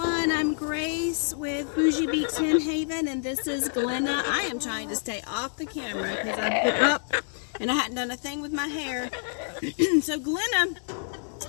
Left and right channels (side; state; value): right; silent; digital silence